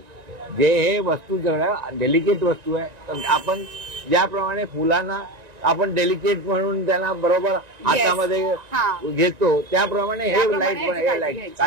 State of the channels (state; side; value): late; left; 1.9 ms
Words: जे हे वस्तू सगळ्या डेलिकेट वस्तू आहे, तर आपण ज्याप्रमाणे फुलांना आपण डेलिकेट म्हणून त्यांना बरोबर हातामध्ये हा. घेतो त्याप्रमाणे हे त्याप्रमाणे लाईट पण ह्याची हे लाईट घ्यायची.